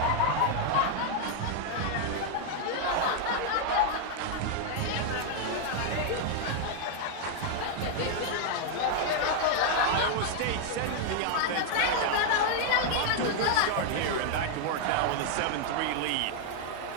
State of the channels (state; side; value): different; both; correlation 0.00